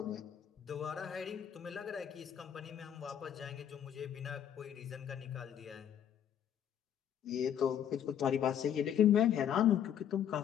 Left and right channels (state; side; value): quieter; right; 9.5 dB